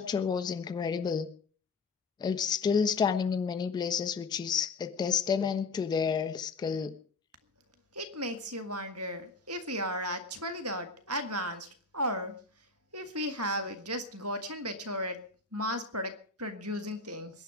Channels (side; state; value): right; quieter; 4.1 dB